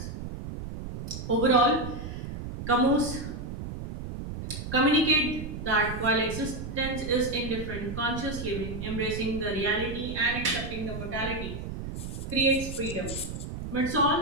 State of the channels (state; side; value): noise; right; rumble, 7 dB below the sound